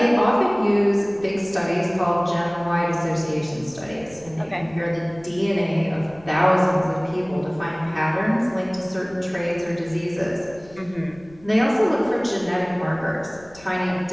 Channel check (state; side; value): noise; left; rumble, 24 dB below the sound